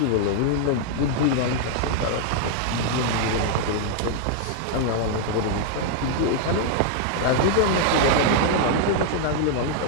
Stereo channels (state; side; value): different; both; correlation 0.00